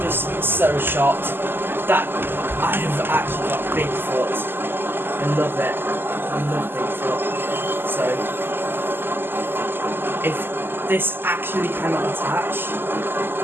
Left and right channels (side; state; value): left; late; 0.098 ms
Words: just so shocked that I have actually got Bigfoot. I love it. I love Bigfoot. So if this actually cannot attach,